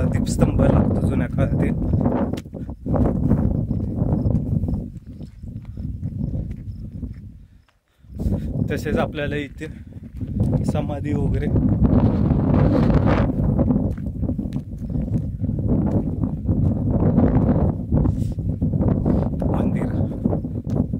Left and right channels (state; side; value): identical; both; correlation 1.00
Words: दीपस्तंभ लागतो जुन्या काळातील. तसेच आपल्याला इथे समाधी वगैरे मंदिर.